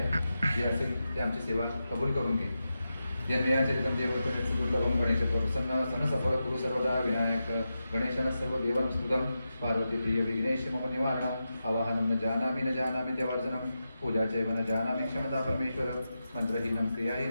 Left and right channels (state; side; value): inverted; both; correlation -0.90